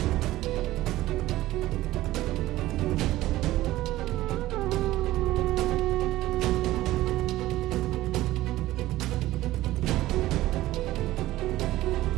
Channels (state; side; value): quieter; left; 16.2 dB